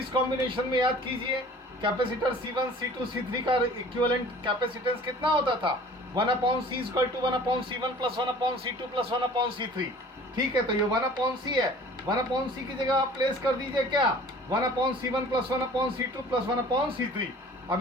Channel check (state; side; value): normal; both; correlation 0.47